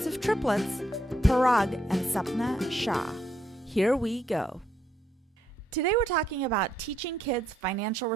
of triplets, Parag and Supna Shah. Here we go. Today we're talking about teaching kids financial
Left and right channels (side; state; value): both; normal; correlation 0.74